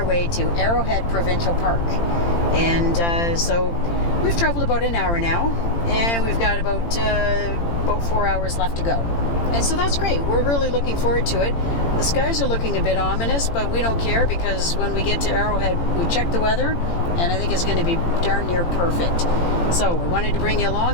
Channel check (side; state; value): right; late; 18 ms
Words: way to Arrowhead Provincial Park. And so we've traveled about an hour now, and we've got about 4 hours left to go. And so that's great. We're really looking forward to it. The skies are looking a bit ominous, but we don't care because when we get to Arrowhead, we check the weather, and I think it's going to be darn near perfect. So we wanted to bring you